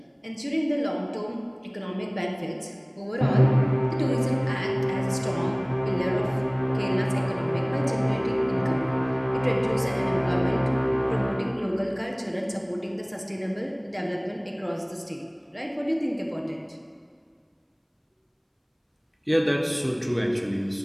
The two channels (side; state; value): both; identical; correlation 1.00